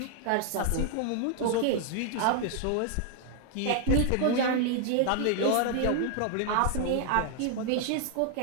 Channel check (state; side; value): different; both; correlation 0.00